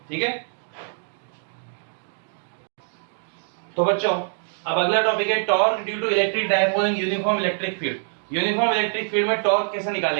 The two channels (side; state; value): left; silent; 62 dB below the other